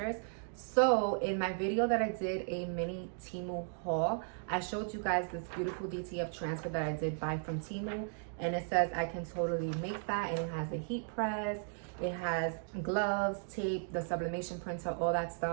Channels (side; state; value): left; silent; digital silence